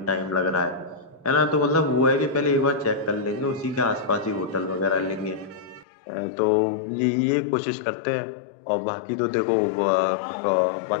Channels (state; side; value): drops out; right; at 5.9 s